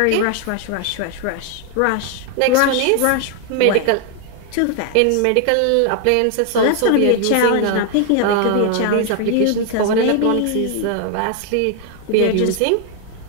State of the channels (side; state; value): both; different; correlation 0.00